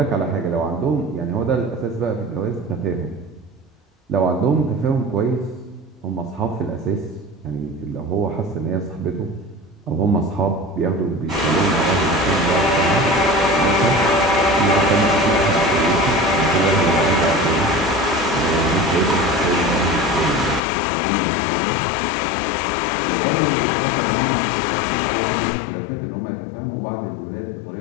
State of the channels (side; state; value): right; drops out; at 20.6 s